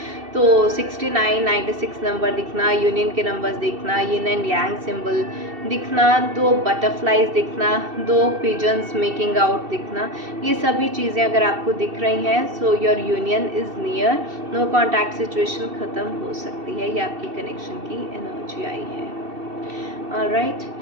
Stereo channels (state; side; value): late; left; 2.7 ms